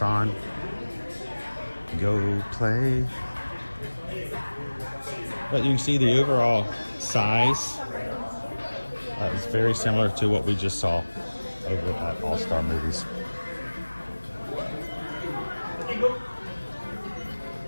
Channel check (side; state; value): both; inverted; correlation -1.00